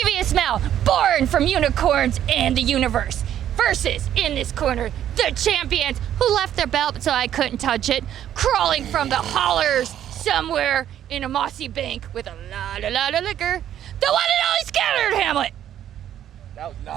Mel, born from unicorns and the universe, versus, in this corner, the champions who left their belt so I couldn't touch it, crawling from the hollers somewhere in a mossy bank with a lot of liquor, the one and only Scattered Hamlet. That was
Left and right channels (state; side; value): quieter; left; 10.9 dB